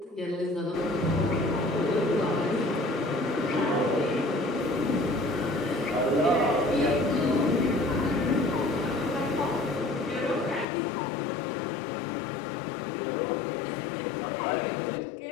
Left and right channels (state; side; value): drops out; right; at 10.7 s